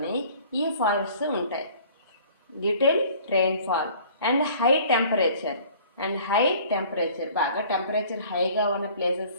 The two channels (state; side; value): inverted; both; correlation -0.51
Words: ఈ forests ఉంటాయి. Little rainfall and high temperature. బాగా temperature హైగా ఉన్న